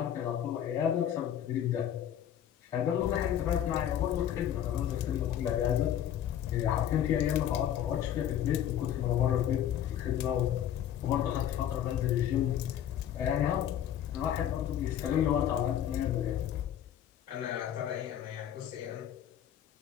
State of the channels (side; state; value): right; quieter; 10.4 dB